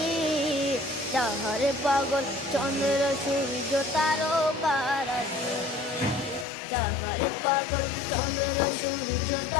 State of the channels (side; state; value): right; drops out; at 6.5 s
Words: যাহারে পাগল চন্দ্র সূর্য তারকারাজি, যাহারে পাগল চন্দ্র সূর্য